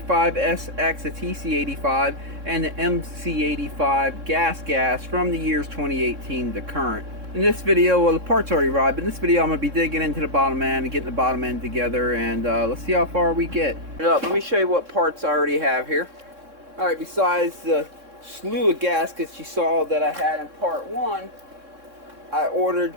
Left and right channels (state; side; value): late; left; 3.6 ms